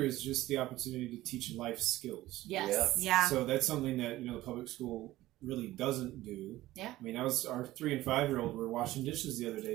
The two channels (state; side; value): quieter; left; 16.4 dB